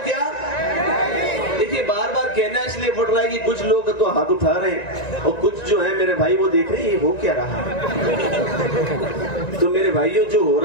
बार बार कहना इसलिए पड़ रहा है कि कुछ लोग तो हाथ उठा रहे हैं और कुछ जो है मेरे भाई वो देख रहे हैं ये हो क्या रहा है। तो मेरे भाइयों जो हो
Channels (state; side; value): late; right; 1.9 ms